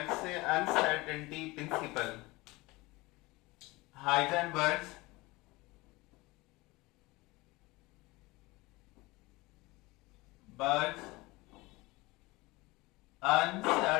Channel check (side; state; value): right; quieter; 22.1 dB